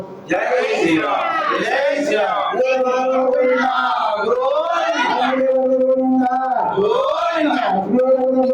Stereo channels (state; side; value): identical; both; correlation 1.00